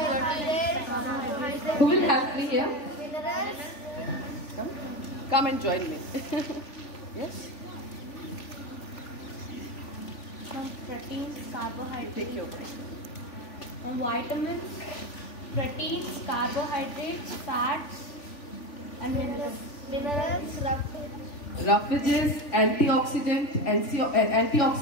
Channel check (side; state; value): right; late; 3.4 ms